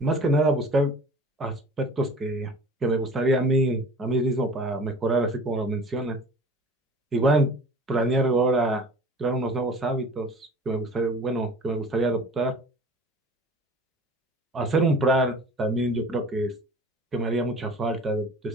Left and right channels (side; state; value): both; normal; correlation 0.44